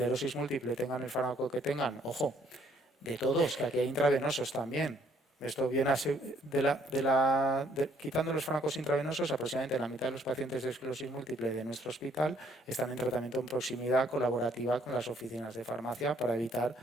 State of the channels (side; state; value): both; normal; correlation 0.65